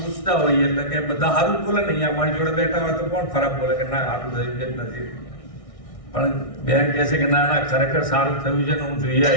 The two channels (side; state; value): right; late; 1.6 ms